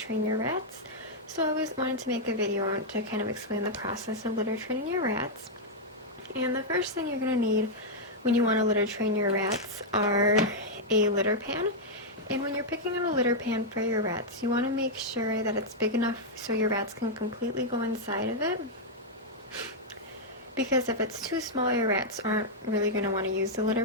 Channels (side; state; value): both; normal; correlation -0.04